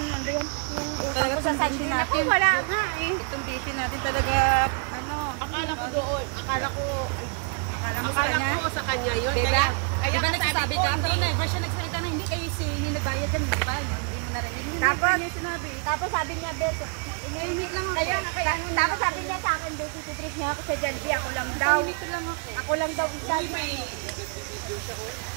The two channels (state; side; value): quieter; left; 38.2 dB